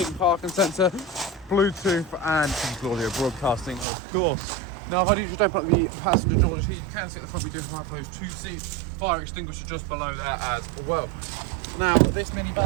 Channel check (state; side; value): drops out; left; at 3.9 s